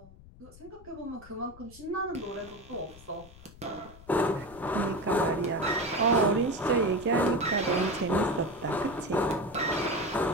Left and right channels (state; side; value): noise; left; rumble, 20 dB below the sound